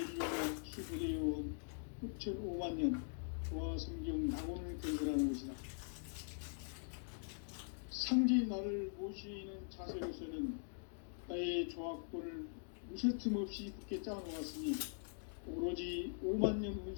수부되어온 후천 5만년 조화성경 낙원을 건설하는 것이다. 상제인 나를 모시는 자세로서는 나의 조화권을 무쇠틈 없이 굳게 짜놓았으니 오로지 5만년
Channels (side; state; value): right; silent; digital silence